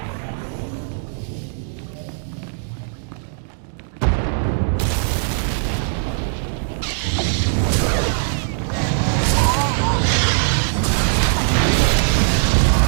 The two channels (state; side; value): silent; left; digital silence